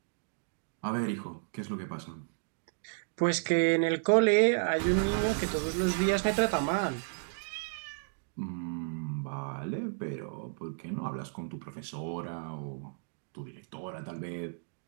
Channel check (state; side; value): silent; left; digital silence